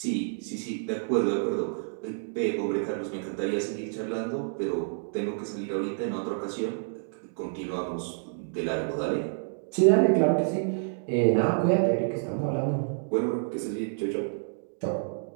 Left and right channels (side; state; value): left; silent; digital silence